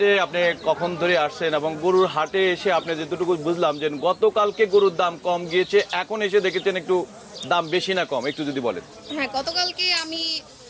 আপনি কখন ধরে আসছেন এবং গরুর হাটে এসে আপনি যেটুকু বুঝলাম যে গতকালকে গরুর দাম কম গিয়েছে, এখন এসে দেখেছেন একটু দাম বেশি না কম, একটু যদি বলেন। হ্যাঁ, গতকালকে আমি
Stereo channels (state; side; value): identical; both; correlation 1.00